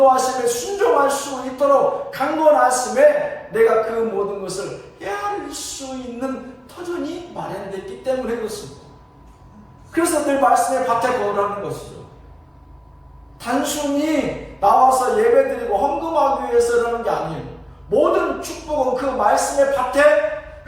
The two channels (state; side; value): identical; both; correlation 1.00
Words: 순종할 수 있도록 강권하심에 내가 그 모든 것을 헤아릴 수 있는 터전이 마련됐기 때문에 그렇습니다. 그래서 늘 말씀의 밭에 거하라는 것이죠. 단순히 나와서 예배드리고 헌금하기 위해서라는 게 아니에요. 모든 축복은 그 말씀의 밭에